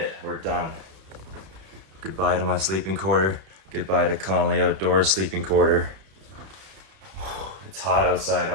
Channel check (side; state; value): left; late; 31 ms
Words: We're done. Goodbye to my sleeping quarter. Goodbye to Connolly Outdoors sleeping quarter. It's hot outside